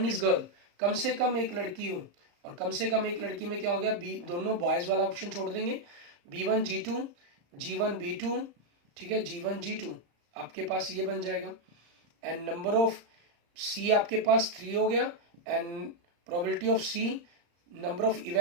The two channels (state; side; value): late; left; 34 ms